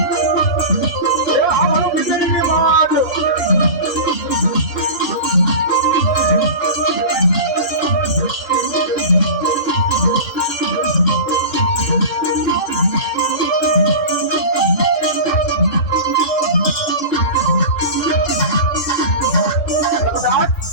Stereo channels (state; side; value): late; right; 2.2 ms